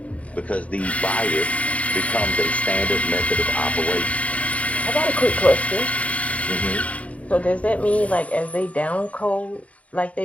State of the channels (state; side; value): late; right; 0.067 ms